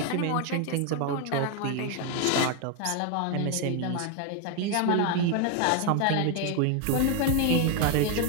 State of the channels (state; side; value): different; both; correlation 0.01